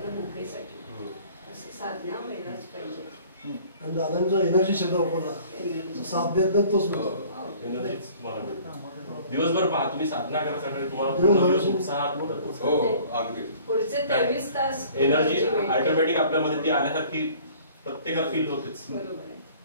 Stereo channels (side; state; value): both; inverted; correlation -0.51